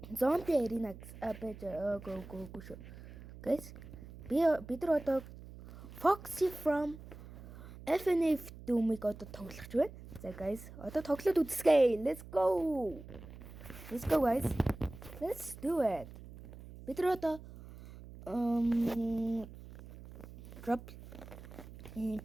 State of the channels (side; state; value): right; noise; hum, 15 dB below the sound